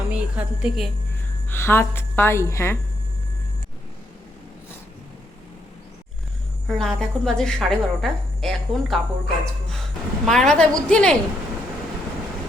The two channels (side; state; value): both; normal; correlation 0.77